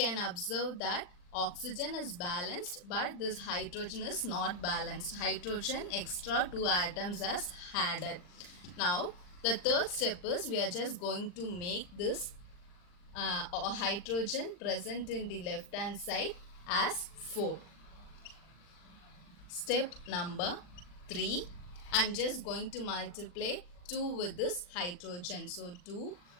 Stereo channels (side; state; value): right; late; 39 ms